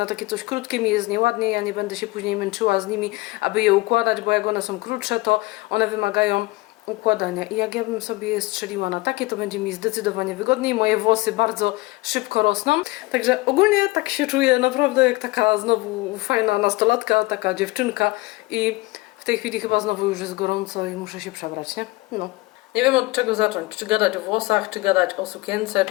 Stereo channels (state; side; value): quieter; right; 22.0 dB